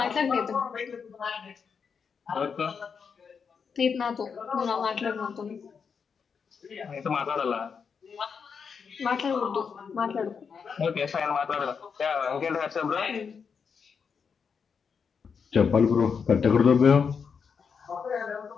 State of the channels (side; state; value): right; quieter; 6.1 dB